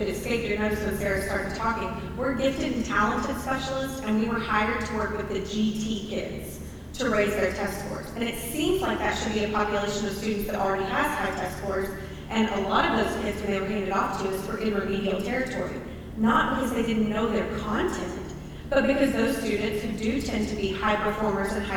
it escaped your notice when Sarah started talking, we're gifted and talented specialists, and we were hired to work with the GT kids to raise their test scores. And it seems like that should be a population of students that already has high test scores, and a lot of those kids, when they were handed off to us, were in remedial territory. Not because they didn't know their content, but because those students who do tend to be high performers and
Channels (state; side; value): identical; both; correlation 1.00